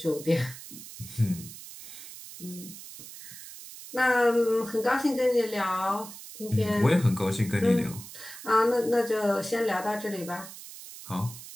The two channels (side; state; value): right; noise; hiss, 14 dB below the sound